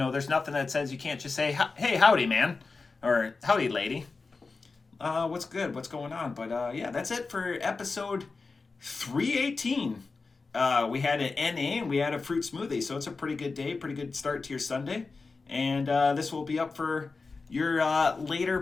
nothing that says you can't just say, hey, howdy, man, or howdy, lady. What's good? What's going on? But yeah, that's it for episode 318. We had an NA and we had a fruit smoothie, so it's a pretty good day, pretty good start to your Sunday. And this will be up for your later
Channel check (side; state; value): right; quieter; 4.1 dB